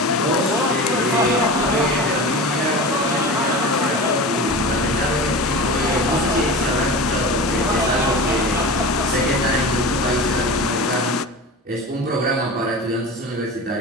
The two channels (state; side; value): normal; both; correlation 0.31